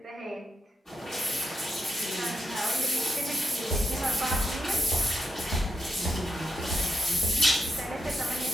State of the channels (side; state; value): both; normal; correlation 0.84